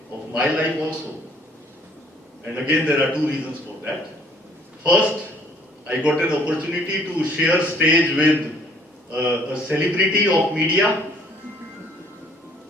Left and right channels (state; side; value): normal; both; correlation 0.60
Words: of my life also. And again, there are two reasons for that. First, I got an opportunity to share stage with a celebrity of media.